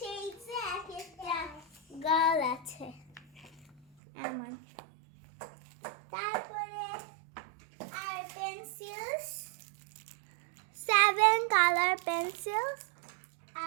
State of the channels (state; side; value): drops out; left; at 3.8 s